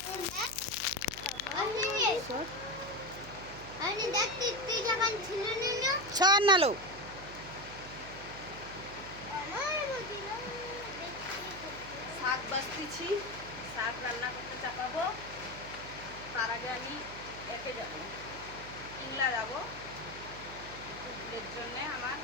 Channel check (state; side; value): noise; right; hum, 14 dB below the sound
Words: সর নালো। শাক বাছতেছি, শাক রান্না করতে চাপাবো। তার আগে আমি একে যাবো, ইংলা যাবো। ভুলের জন্যে আমার